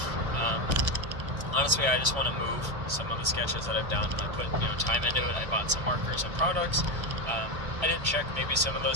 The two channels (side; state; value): left; late; 1.3 ms